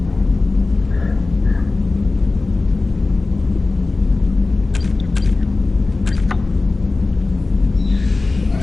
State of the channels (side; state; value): right; quieter; 3.5 dB